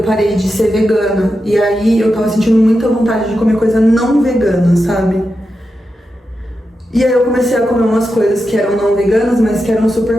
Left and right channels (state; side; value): normal; both; correlation 0.89